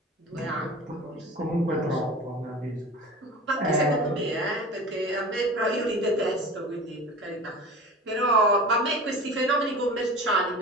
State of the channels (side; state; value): both; normal; correlation 0.36